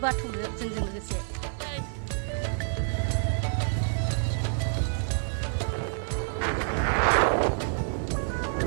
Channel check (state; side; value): silent; left; digital silence